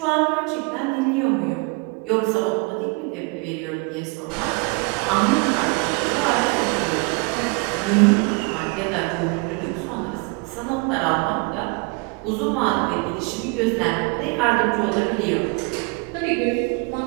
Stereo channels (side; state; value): left; quieter; 29.9 dB